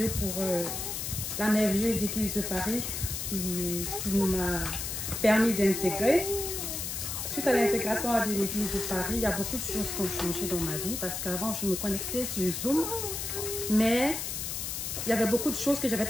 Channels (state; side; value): noise; left; hiss, 4 dB below the sound